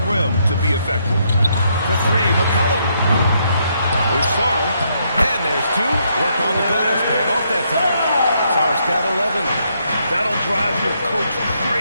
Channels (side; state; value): both; inverted; correlation -0.75